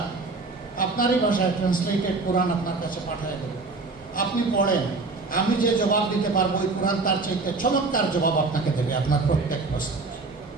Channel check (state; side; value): quieter; left; 3.8 dB